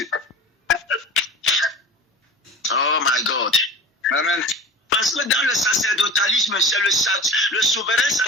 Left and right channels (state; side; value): normal; both; correlation 0.36